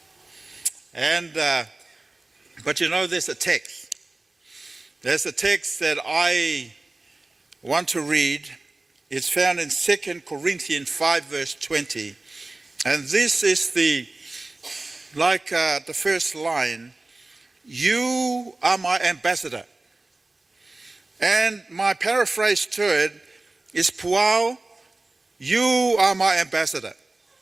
And, but there's a text. There's a text that I want to read. It's found in 2 Corinthians 5, verse 20. And this is the first line, "You are my ambassador." And my paraphrase to it is, "Puao, you are my ambassador."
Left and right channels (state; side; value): quieter; left; 3.0 dB